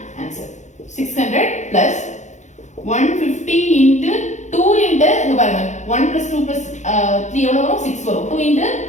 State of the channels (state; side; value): late; right; 0.34 ms